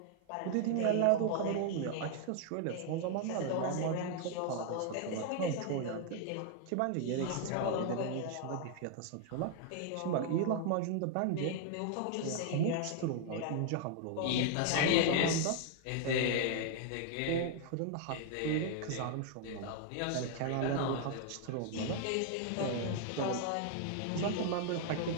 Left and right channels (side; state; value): both; different; correlation 0.00